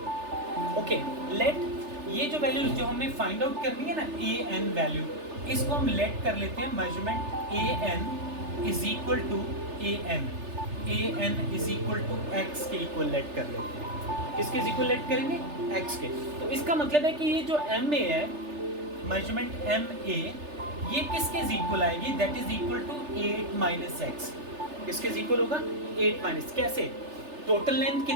ओके लेट ये जो वैल्यू जो हमें फाइंड आउट करनी है ना AN वैल्यू, इसको हम लेट कर लेते हैं measurement A N is equal to A N is equal to X के इक्वल लेट कर लेते हैं। किसके इक्वल लेट करेंगे? एक्स के। तो इसका मतलब है कि ये जो एम ए है, मेजरमेंट एम ए, ये किसके इक्वल आएगी? That is equal to 8 minus X. किसके इक्वल होगा? 8 माइनस, कैसे? टोटल लेंथ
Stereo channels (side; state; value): left; late; 3.3 ms